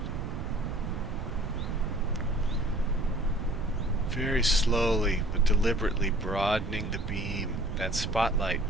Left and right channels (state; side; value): noise; right; rumble, 5 dB below the sound